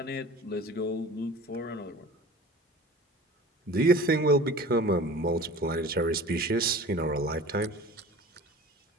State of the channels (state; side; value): normal; both; correlation 0.40